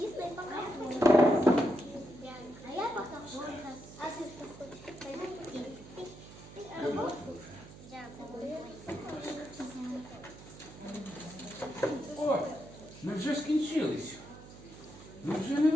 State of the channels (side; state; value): right; noise; hum, 17 dB below the sound